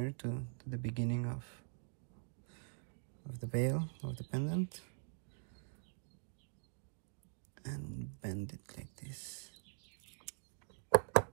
to the beginning of the bale, of the pendant, and bend it like this.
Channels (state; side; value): silent; left; digital silence